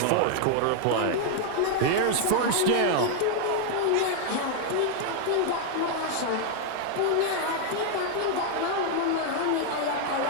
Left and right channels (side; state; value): both; different; correlation 0.00